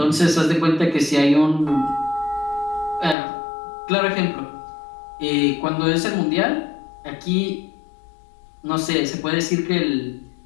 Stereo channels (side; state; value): right; drops out; at 3.2 s